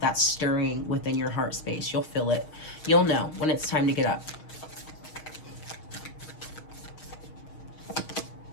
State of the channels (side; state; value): right; late; 6.4 ms